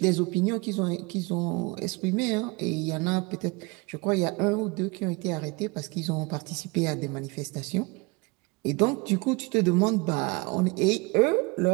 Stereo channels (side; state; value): left; quieter; 26.7 dB